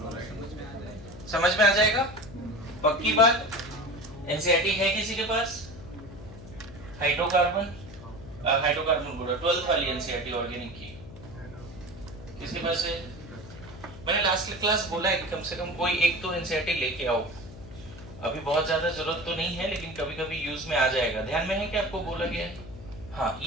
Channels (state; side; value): noise; left; hum, 15 dB below the sound